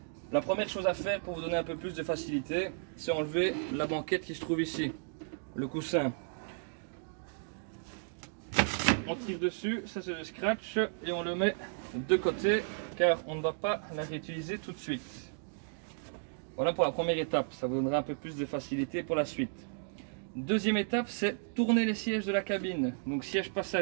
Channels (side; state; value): left; silent; digital silence